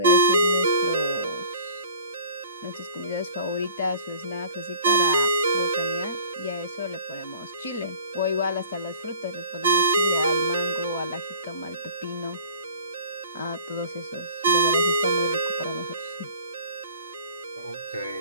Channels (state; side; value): inverted; both; correlation -0.46